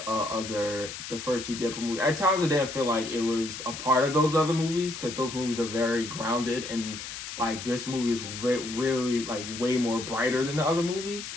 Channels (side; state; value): left; noise; hiss, 9 dB below the sound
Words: first 2 Deadpool movies. At times, I didn't feel like it was a part of those other movies because those movies are very grounded and this movie is really way more brighter than the other movies.